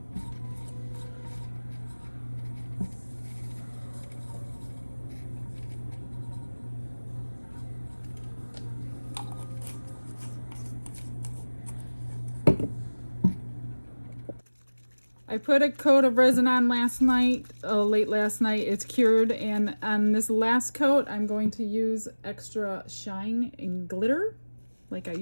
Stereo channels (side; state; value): both; inverted; correlation -1.00